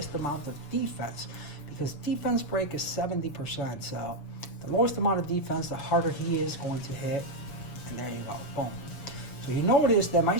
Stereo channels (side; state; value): right; late; 7.1 ms